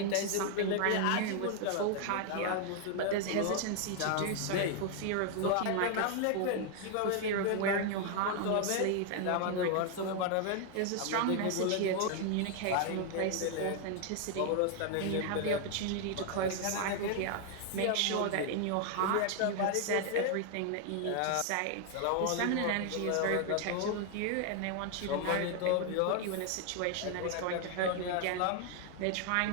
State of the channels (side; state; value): both; different; correlation 0.00